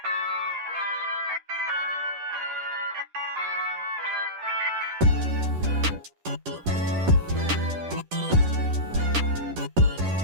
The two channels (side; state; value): left; late; 10 ms